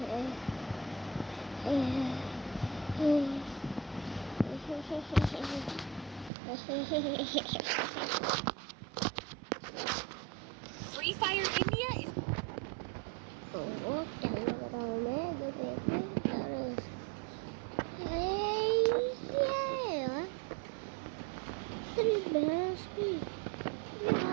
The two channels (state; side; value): drops out; left; at 6.3 s